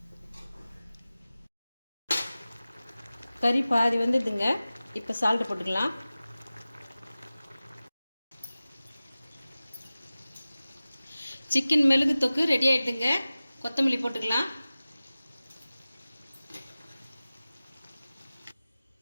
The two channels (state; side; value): inverted; both; correlation -0.97